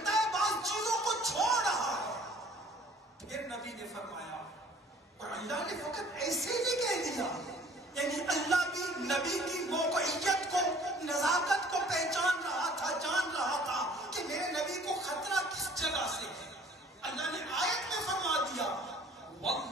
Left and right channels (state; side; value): normal; both; correlation 0.53